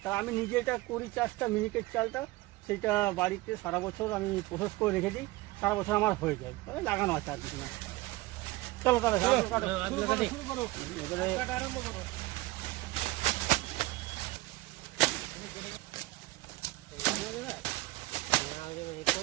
তা আমি নিজে এটা করি চাষটা, মিনিকেট চালটা, সেটা বাড়িতে সারা বছর আমি প্রসেস করে রেখে দিই, সারা বছর আমার হয়ে যায়, লাগানো আছে আর কিছু না। চলো তাহলে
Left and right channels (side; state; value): left; quieter; 19.7 dB